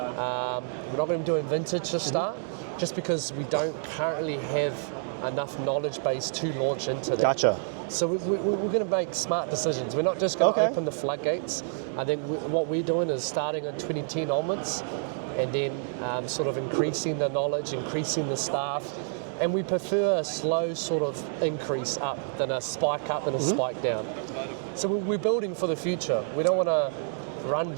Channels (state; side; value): silent; left; digital silence